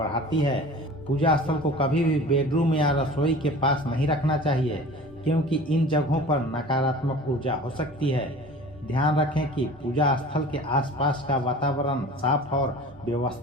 है। पूजा स्थल को कभी भी बेडरूम या रसोई के पास नहीं रखना चाहिए क्योंकि इन जगहों पर नकारात्मक ऊर्जा हो सकती है। ध्यान रखें कि पूजा स्थल के आसपास का वातावरण साफ और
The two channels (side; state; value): both; normal; correlation 0.41